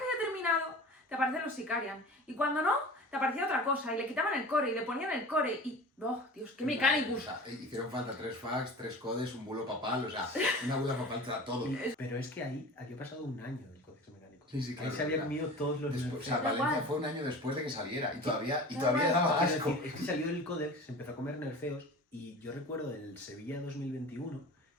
había terminado, te aparecen los Sicarian. Y cuando no, te aparecía otra cosa. Y le quitaban el core y le ponían el core. Y, ¡oh, Dios, qué O Mechanicus! sea, hicieron falta 3 fax, 3 codes, un bulo papal, o sea, una buda papal te da todo. Pero es que ahí había pasado un año del Codex Mecánico. Sí, claro, Ahí se había claro. comido todos los Después, o sea, nerfeos. Valencia igual. fue un año después de que saliera y todavía igual. daba Quiero asco. decir, es que salió el Codex, se empezó a comer nerfeos y yo recuerdo el Sevilla 2021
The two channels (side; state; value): both; normal; correlation 0.37